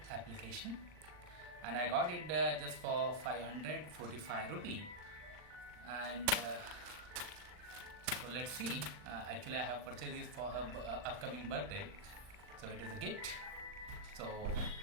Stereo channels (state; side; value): late; left; 39 ms